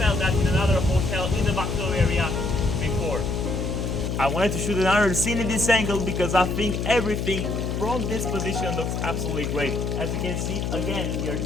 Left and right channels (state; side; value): noise; left; hum, 1 dB below the sound